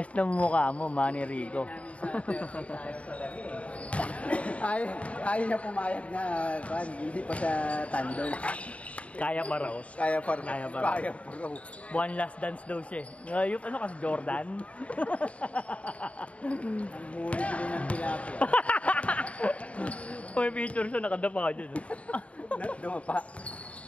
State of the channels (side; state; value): right; late; 0.065 ms